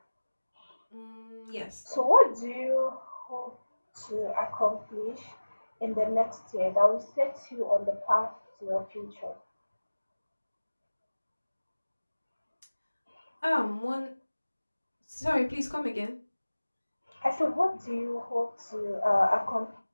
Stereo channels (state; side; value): inverted; both; correlation -1.00